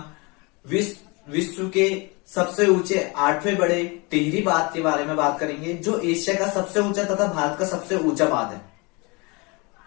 विश्व के सबसे ऊंचे 8वें बड़े टिहरी बांध के बारे में बात करेंगे, जो एशिया का सबसे ऊंचा तथा भारत का सबसे ऊंचा बांध है।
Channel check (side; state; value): right; quieter; 28.1 dB